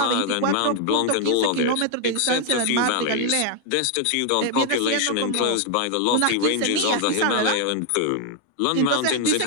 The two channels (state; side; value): different; both; correlation 0.00